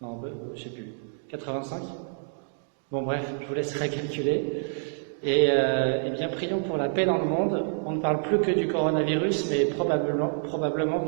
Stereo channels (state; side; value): silent; left; digital silence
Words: Non, je sais plus, 85. Bon bref, je vous laisserai calculer. Et bien, prions pour la paix dans le monde. On ne parle plus que du coronavirus, mais probablement